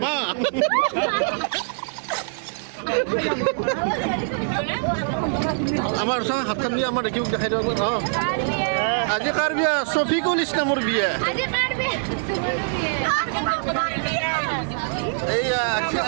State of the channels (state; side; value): silent; left; digital silence